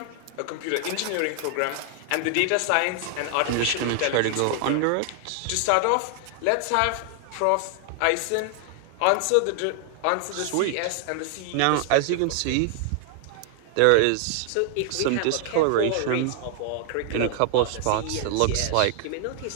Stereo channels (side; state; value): both; different; correlation 0.00